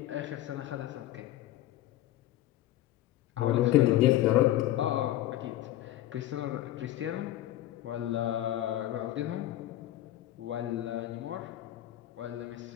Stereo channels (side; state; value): right; quieter; 14.2 dB